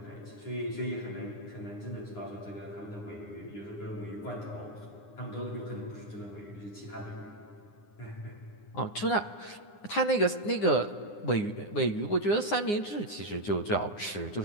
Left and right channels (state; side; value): late; right; 9.8 ms